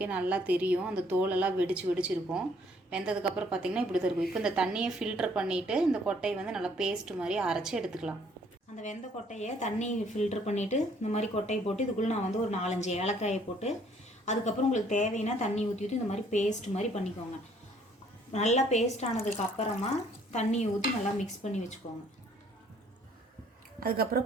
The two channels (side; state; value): both; normal; correlation 0.62